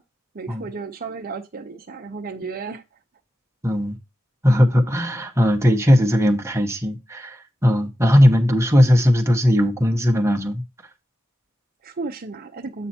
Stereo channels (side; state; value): both; normal; correlation 0.92